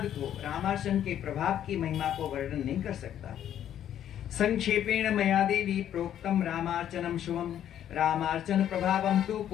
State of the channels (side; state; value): right; quieter; 10.6 dB